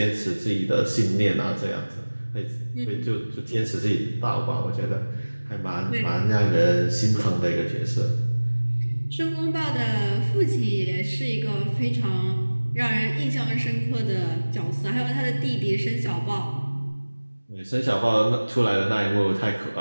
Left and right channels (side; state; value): both; inverted; correlation -1.00